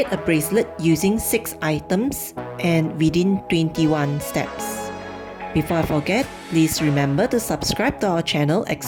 a bracelet using 6 items and within 21 steps. Before I forget, please remember to subscribe to our channel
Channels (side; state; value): both; identical; correlation 1.00